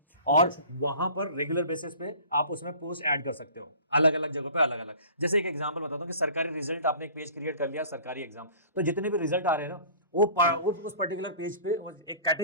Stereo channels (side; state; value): both; inverted; correlation -0.45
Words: और वहां पर रेगुलर बेसिस पे आप उसमें पोस्ट ऐड कर सकते हो, अलग अलग जगहों पे अलग अलग। जैसे एक एग्जांपल बताता हूँ कि सरकारी रिजल्ट, आपने एक पेज क्रिएट कर लिया सरकारी एग्जाम, तो जितने भी रिजल्ट आ रहे हैं ना वो उस पर्टिकुलर पेज पे एक